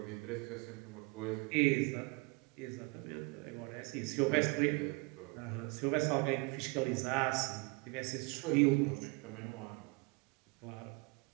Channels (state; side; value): quieter; left; 27.7 dB